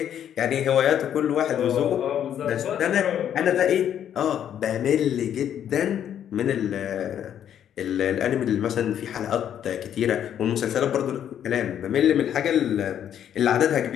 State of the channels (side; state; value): right; quieter; 9.7 dB